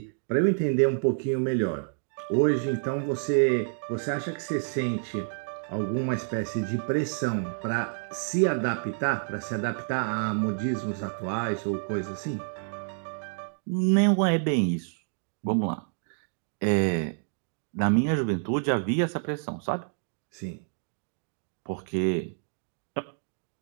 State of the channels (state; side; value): silent; left; digital silence